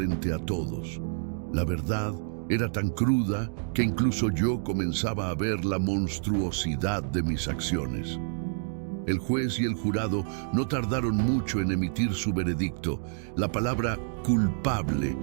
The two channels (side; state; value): left; silent; digital silence